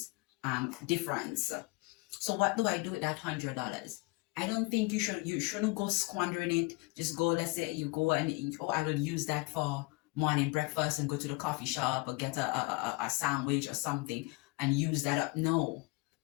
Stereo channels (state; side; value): quieter; right; 26.2 dB